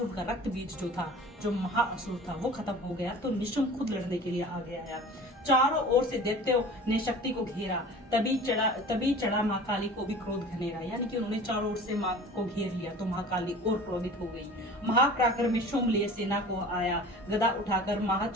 उनका रक्त बीज जो था, जो महाअसुर था, वो खत्म हो गया तो निशुम्भ खुद लड़ने के लिए आगे आया। चारों ओर से दैत्यों ने शक्ति को घेरा, तभी चढ़ा माँ काली को भी क्रोध घनेरा। यानी कि उन्होंने चारों ओर से माँ को घेर लिया तो माँ काली और क्रोधित हो गई। महाप्राक्रम में शुम्भ लिए सेना को आया, गदा उठाकर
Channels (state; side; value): normal; both; correlation 0.41